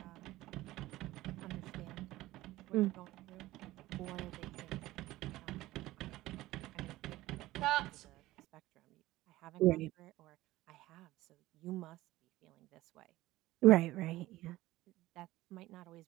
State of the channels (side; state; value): left; quieter; 17.1 dB